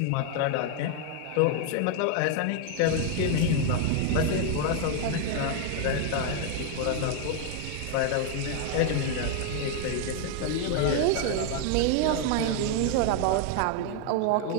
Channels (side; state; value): both; different; correlation 0.01